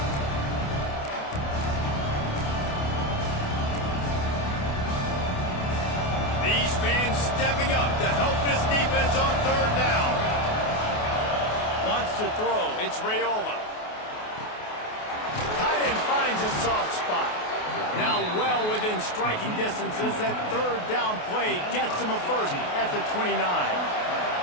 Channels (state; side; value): late; right; 28 ms